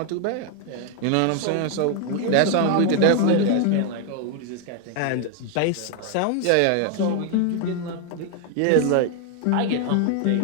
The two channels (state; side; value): different; both; correlation 0.01